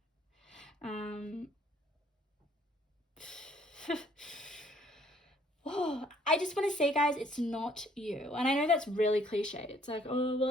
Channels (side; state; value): both; normal; correlation 0.63